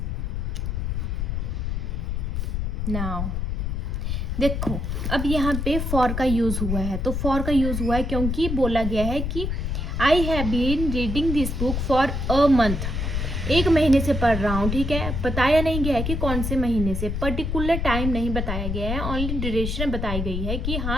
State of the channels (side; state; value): left; noise; rumble, 2 dB below the sound